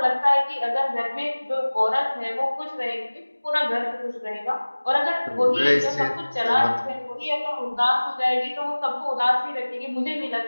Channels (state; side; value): inverted; both; correlation -1.00